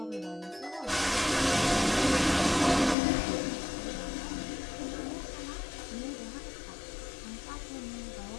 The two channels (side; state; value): right; drops out; at 3.0 s